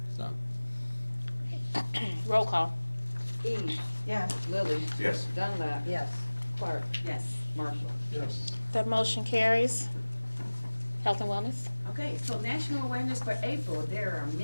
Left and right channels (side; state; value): both; inverted; correlation -1.00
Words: So. Roll call. Eves. Yes. Lily. Yes. Dunlap. Yes. Clark. Yes. Marshall. Yes. That motion carries. Health and wellness. Okay, so national awareness for April, there are